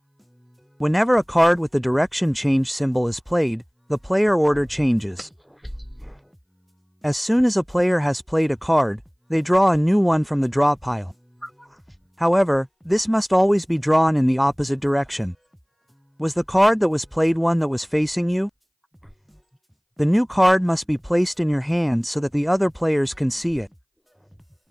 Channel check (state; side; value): identical; both; correlation 1.00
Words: Whenever a card with the direction change symbol is played, the player order changes. As soon as a player has played a card, they draw a new one from the draw pile. However, this must always be drawn in the opposite direction. Was the card that was played one that was facing you? The new card must be placed in your hand so that the other players can see it.